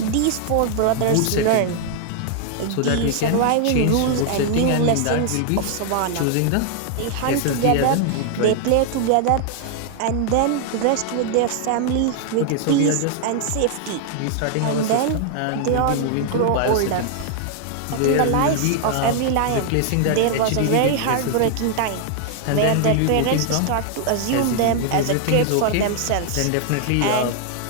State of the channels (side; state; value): both; different; correlation 0.00